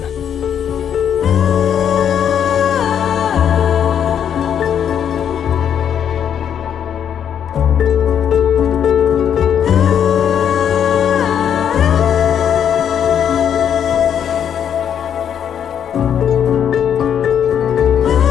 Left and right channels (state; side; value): quieter; right; 8.8 dB